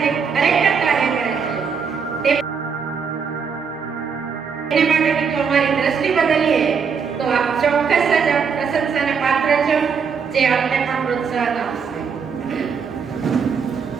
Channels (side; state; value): left; quieter; 6.1 dB